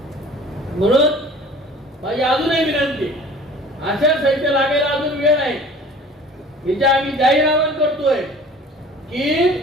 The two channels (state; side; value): normal; both; correlation 0.46